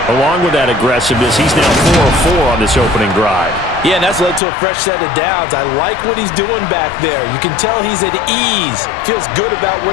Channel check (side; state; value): right; drops out; at 4.4 s